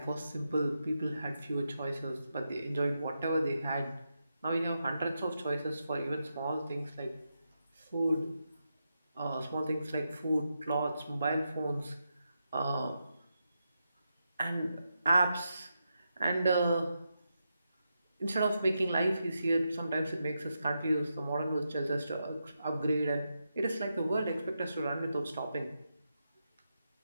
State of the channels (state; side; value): inverted; both; correlation -0.86